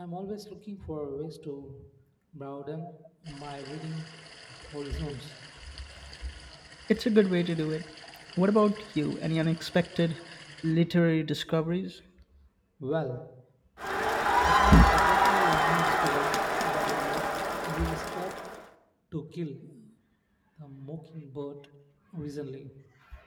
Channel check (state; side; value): identical; both; correlation 1.00